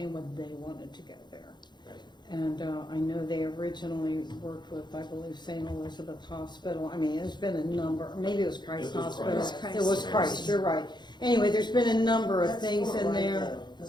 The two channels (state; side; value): late; right; 0.21 ms